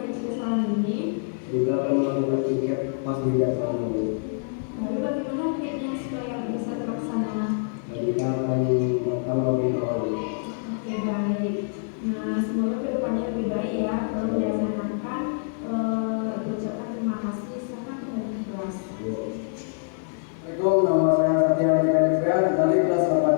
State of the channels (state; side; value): silent; right; 61 dB below the other